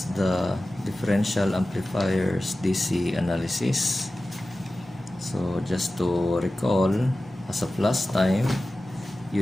the differential amplifiers DC analysis. So just to recall, as of last time,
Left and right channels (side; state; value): both; normal; correlation 0.95